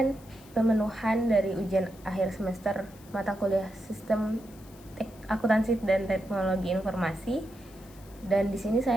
pemenuhan dari ujian akhir semester mata kuliah Sistem Akuntansi dan Teknologi Informasi. Dan di sini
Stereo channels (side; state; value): left; noise; hiss, 24 dB below the sound